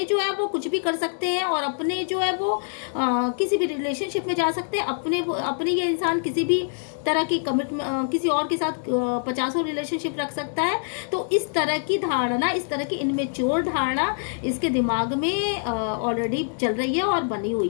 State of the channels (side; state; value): right; silent; 62 dB below the other